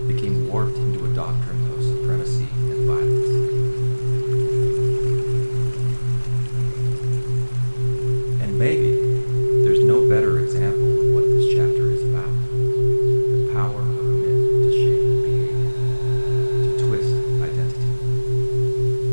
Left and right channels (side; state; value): both; inverted; correlation -1.00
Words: became warped into a doctrine of supremacy and violence. And maybe there's no better example of what this chapter is about. The power of myth to shape behavior, to twist identity,